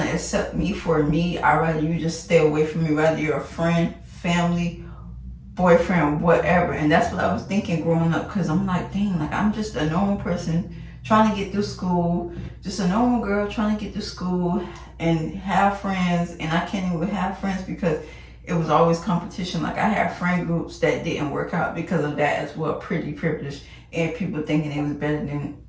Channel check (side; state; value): both; identical; correlation 1.00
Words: accept me for me, I'd rather you just stay away from me, whether you're a friend, family, boyfriend, whatever. And that's what I was thinking growing up, because I'm like, dang, like, I'm just a normal person trying to get through school, just a normal girl trying to get through school and have friends. And I can't even have friends because it was always competition. Like, I had friend groups that didn't work out because of that as well, pretty privileged, and people thinking they was better than